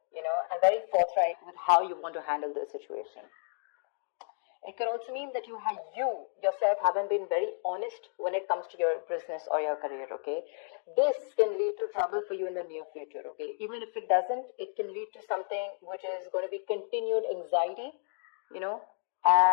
and very forthright with how you want to handle the situation. It could also mean that you yourself haven't been very honest when it comes to your business or your career, okay? This can lead to trouble for you in the near future, okay? Even if it doesn't, it can lead to something which is going to be continued anxiety,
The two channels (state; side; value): silent; right; digital silence